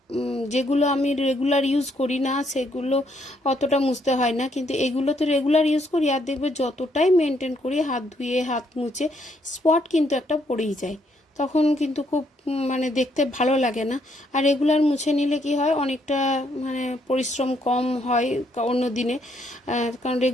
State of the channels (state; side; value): normal; both; correlation 0.72